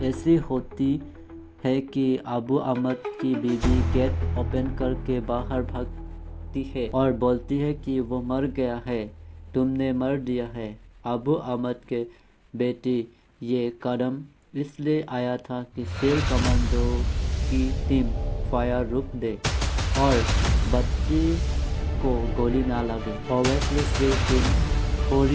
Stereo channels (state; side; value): identical; both; correlation 1.00